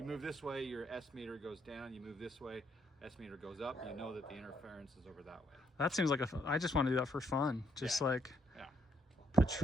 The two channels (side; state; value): both; normal; correlation 0.73